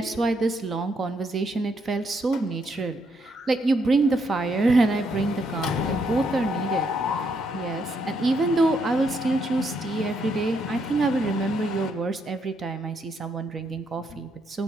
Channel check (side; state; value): both; normal; correlation 0.75